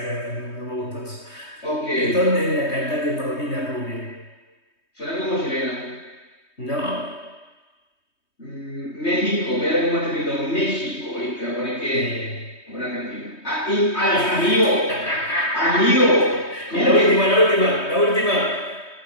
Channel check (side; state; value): right; late; 3.2 ms